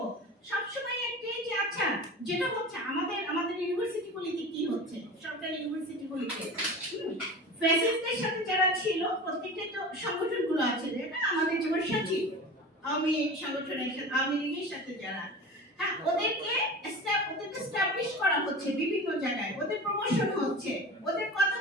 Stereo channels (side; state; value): both; normal; correlation 0.33